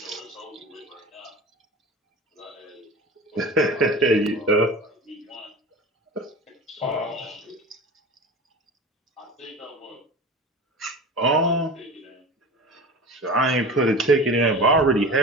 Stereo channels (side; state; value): both; normal; correlation 0.34